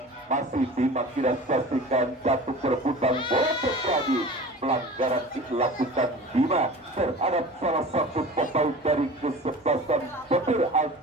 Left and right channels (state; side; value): normal; both; correlation 0.38